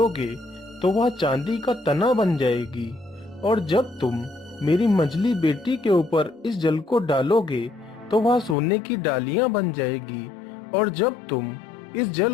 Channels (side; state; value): right; drops out; at 8.6 s